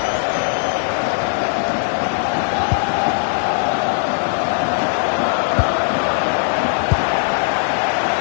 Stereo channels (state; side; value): silent; right; digital silence